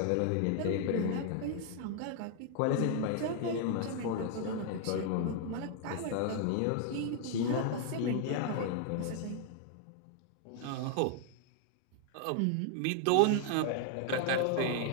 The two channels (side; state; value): both; different; correlation 0.00